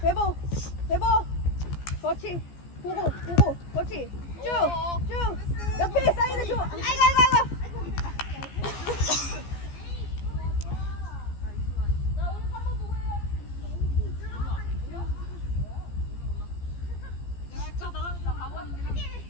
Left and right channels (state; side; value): late; right; 14 ms